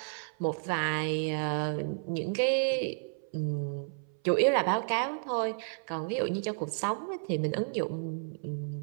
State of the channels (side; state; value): left; silent; 57 dB below the other